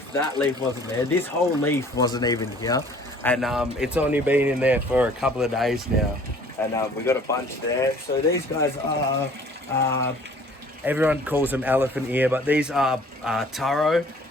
that leaf wasn't there. This whole leaf wasn't even here. And it's only been in there for a couple of days now. And we got a bunch there. So these guys are, everyone calls them elephant ear, but these are taro,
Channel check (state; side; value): normal; both; correlation 0.52